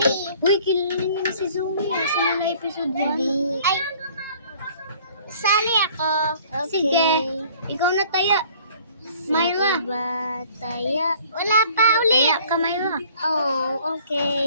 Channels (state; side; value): inverted; both; correlation -0.53